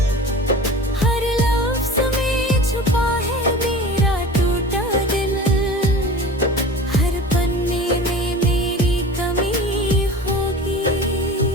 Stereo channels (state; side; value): normal; both; correlation 0.36